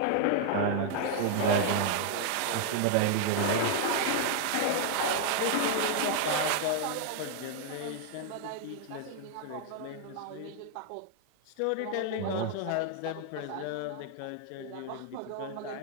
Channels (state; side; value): different; both; correlation 0.00